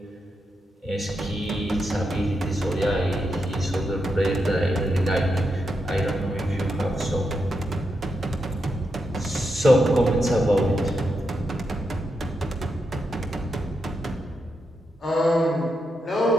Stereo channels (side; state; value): both; normal; correlation 0.85